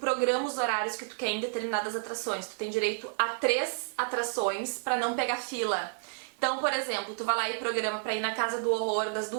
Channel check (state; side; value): silent; left; digital silence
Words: os horários que tu quer em determinadas atrações. Tu tem direito a 3 atrações pra não pegar fila. Então, por exemplo, tu vai lá e programa pra ir na Casa do Horror das